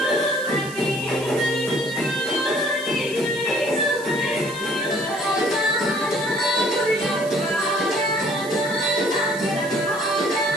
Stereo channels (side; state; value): right; noise; hiss, 15 dB below the sound